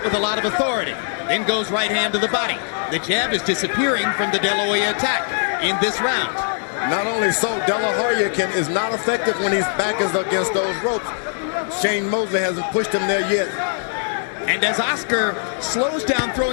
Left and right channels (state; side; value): silent; right; digital silence